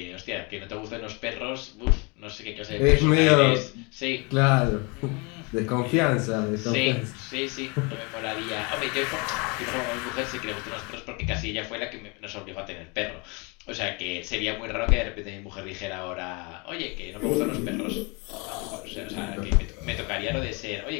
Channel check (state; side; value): quieter; right; 30.1 dB